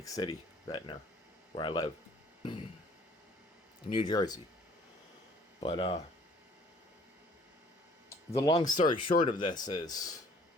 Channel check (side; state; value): both; normal; correlation 0.56